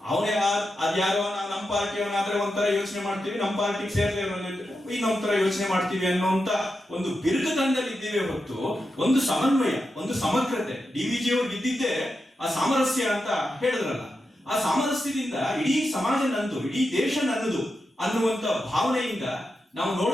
ಅವನೇ ಅದ್ಯಾರೋ ನಮ್ಮ ಪಾರ್ಟಿಯವನಾದ್ರೆ ಒಂಥರ ಯೋಚನೆ ಮಾಡ್ತೀವಿ, ನಮ್ಮ ಪಾರ್ಟಿಗೆ ಸೇರ್ದೇ ಇನ್ನೊಂದ್ ತರ ಯೋಚನೆ ಮಾಡ್ತೀವಿ ಅನ್ನೋಂತ ಒಂದು ಬಿರುಕುತನದಲ್ಲಿ ಇದ್ದೀವಿ ಹೊತ್ತು ಒಂದು ಸಮನ್ವಯ, ಒಂದು ಸಮಗ್ರತೆ. ಡಿವಿಜಿ ಅವ್ರಿಗೆ ಇದ್ದಿದ್ದೇ ಆ ಸಾಮರಸ್ಯ ಅಂತ ಹೇಳಿದ್ರಲ್ಲ, ಆ ಸಾಮರಸ್ಯದಿಂದ ಇಡೀ ಸಮಾಜ ನಂದು, ಇಡೀ ದೇಶ ನನ್ನದು ಅನ್ನುವಂತ ಭಾವನೆಯಿಂದ ನಾವು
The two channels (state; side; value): normal; both; correlation 0.88